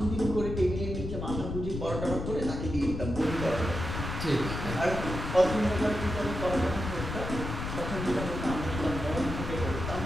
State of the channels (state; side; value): noise; left; rumble, 5 dB below the sound